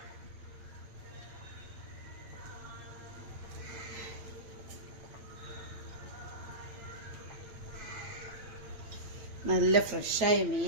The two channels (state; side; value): late; left; 9.3 ms